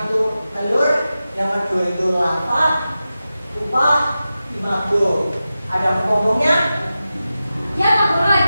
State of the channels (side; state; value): both; inverted; correlation -0.93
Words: itu telur, yang kedua itu larva, pupa, imago. Ada ngomongnya? Ya, Pak Guru,